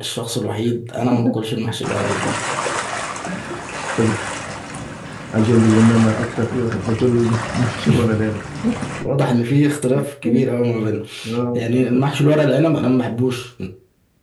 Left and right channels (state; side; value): identical; both; correlation 1.00